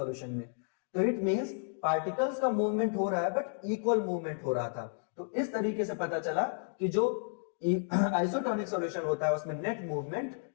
में। तो इट मींस पार्टिकल्स का मूवमेंट हो रहा है बट इक्वल मूवमेंट हो रहा था। तो इस तरीके से पता चला कि जो आइसोटोनिक सॉल्यूशन होता है उसमें नेट मूवमेंट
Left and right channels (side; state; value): right; silent; digital silence